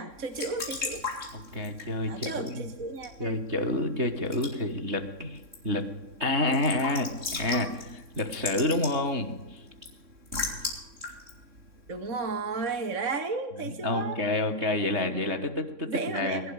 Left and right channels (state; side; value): late; left; 3.6 ms